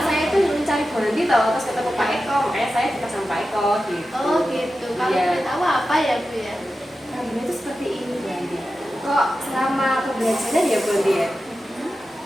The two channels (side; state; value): both; normal; correlation 0.92